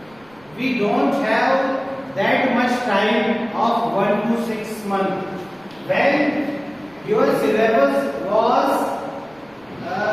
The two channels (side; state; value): right; noise; rumble, 29 dB below the sound